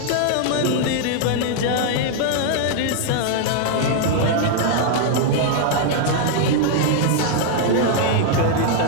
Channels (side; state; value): both; different; correlation 0.00